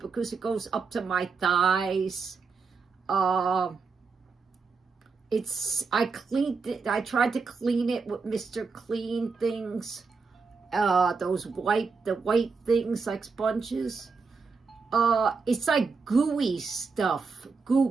it goes up to my thighs. I cleaned it. I tried to clean it with Mr. Clean things. The white things like sponges. It's like gooey stuff.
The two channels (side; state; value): left; quieter; 4.8 dB